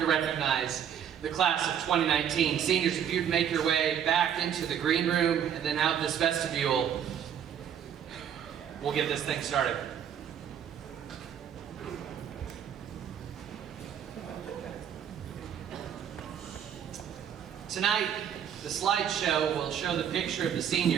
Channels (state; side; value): quieter; left; 8.9 dB